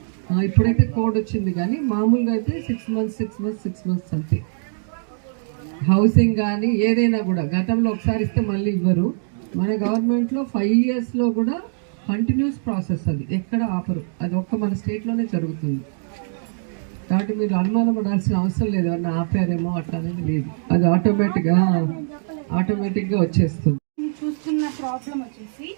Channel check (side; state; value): left; silent; digital silence